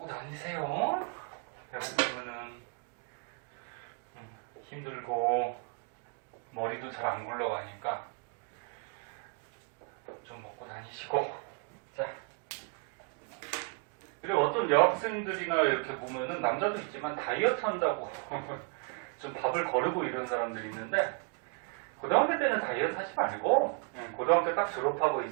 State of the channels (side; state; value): left; quieter; 36.5 dB